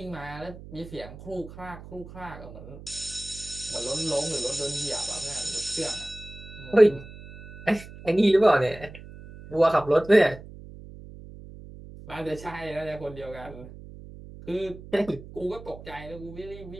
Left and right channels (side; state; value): right; noise; hum, 15 dB below the sound